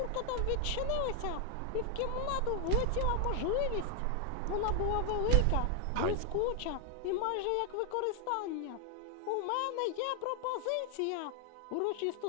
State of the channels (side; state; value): both; different; correlation 0.01